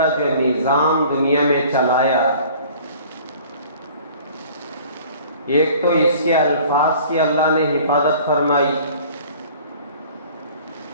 جو نظام دنیا میں چلایا، ایک تو اس کے الفاظ کی اللہ نے حفاظت فرمائی،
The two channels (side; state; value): both; inverted; correlation -0.49